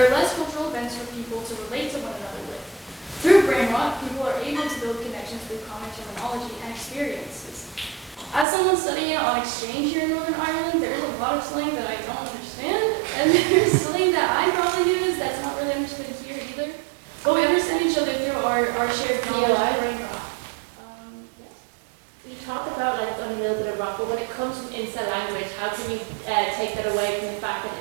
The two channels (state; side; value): drops out; left; at 8.5 s